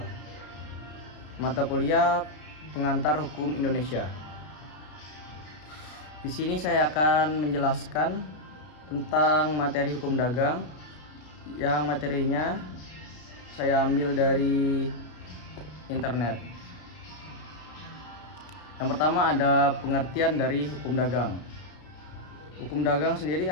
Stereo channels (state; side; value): late; right; 33 ms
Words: Mata kuliah Pengantar Hukum Indonesia. Di sini saya akan menjelaskan tentang materi hukum dagang yang materinya saya ambil dari internet. Yang pertama ada pengertian dari hukum dagang. Hukum dagang sendiri